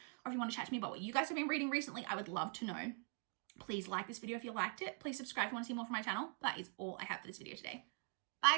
or if you want to chat to me about what you guys have been reading recently. I would love to know. Please like this video if you liked it. Please subscribe if you want to see more from my channel. That is all I have for this video today.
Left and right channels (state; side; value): quieter; left; 39.5 dB